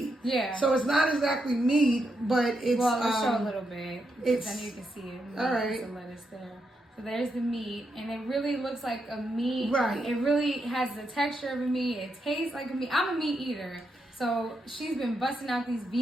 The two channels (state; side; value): normal; both; correlation 0.82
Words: Yeah. So it's not exactly meat, but it's let's show a little bit. It's, then you can see it. All right. Some lettuce there. So there's the meat, and it really looks like a meat. Right. It really has the texture of a meat. It tastes like a meat. I'm a meat eater, so she's been busting out these